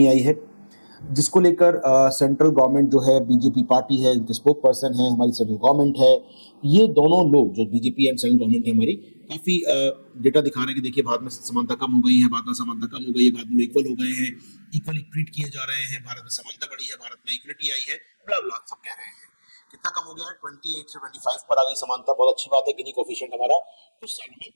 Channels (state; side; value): inverted; both; correlation -1.00